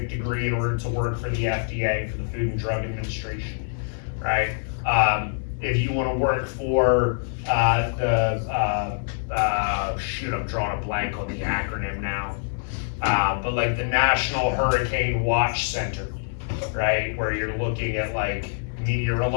degree in order to work for the FDA, for the Food and Drug Administration, right? If you want to work for shoot, I'm drawing a blank on the acronym now, but like the National Hurricane Watch Center, right? Where you're looking at like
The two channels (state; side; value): silent; right; digital silence